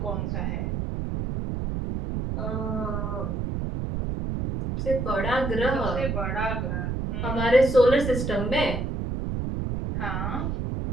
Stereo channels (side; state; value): right; noise; rumble, 2 dB below the sound